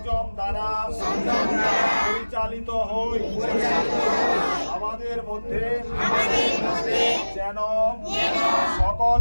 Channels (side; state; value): both; inverted; correlation -1.00